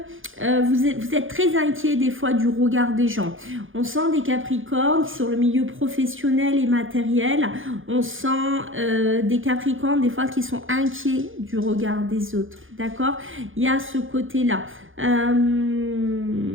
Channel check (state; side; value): late; left; 0.58 ms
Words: vous êtes très inquiet des fois du regard des gens. On sent des Capricornes sur le milieu professionnel et matériel. On sent des Capricornes des fois qui sont inquiets du regard des autres. D'accord? Il y a ce côté-là.